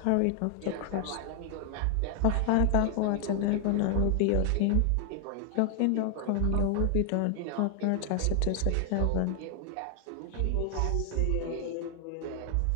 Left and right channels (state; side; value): different; both; correlation 0.00